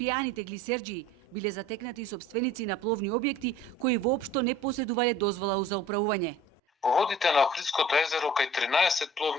глисерџии биле затекнати и собственици на пловни објекти кои воопшто не поседувале дозвола за управување. Во водите на Охридското езеро кај 13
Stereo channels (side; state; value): both; normal; correlation 0.47